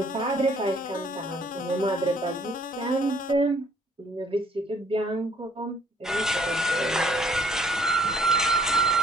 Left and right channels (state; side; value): normal; both; correlation 0.62